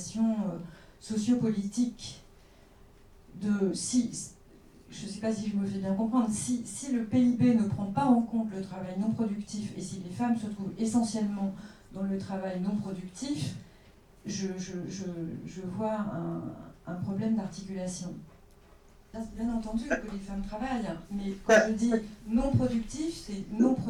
sociopolitiques je ne sais pas si je me fais bien comprendre, si le PIB ne prend pas en compte le travail non productif, et si les femmes se trouvent essentiellement dans le travail non productif, je vois un problème d'articulation. Bien entendu que les femmes travaillent, mais quand je dis non productif, c'est non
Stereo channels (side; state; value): both; identical; correlation 1.00